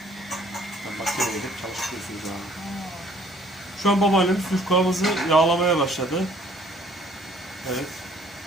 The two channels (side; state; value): both; normal; correlation 0.58